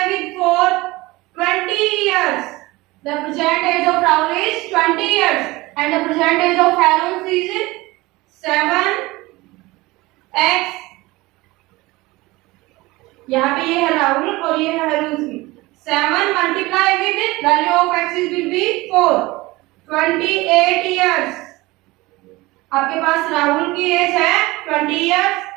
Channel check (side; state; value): left; quieter; 20.9 dB